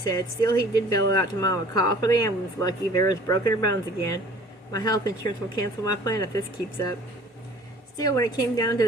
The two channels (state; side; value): normal; both; correlation 0.49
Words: Still, he did bellow out to Mama, "Call for the ambulance, Lucky. Vera's broken her bones again. My health insurance will cancel my plan if this keeps up." Still, when it came down to